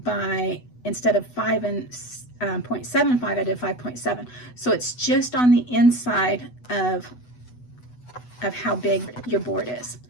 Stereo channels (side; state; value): right; late; 8.1 ms